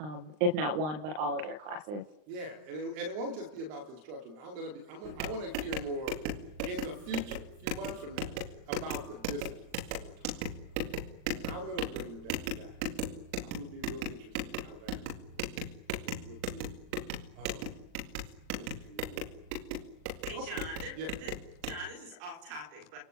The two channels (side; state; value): left; late; 39 ms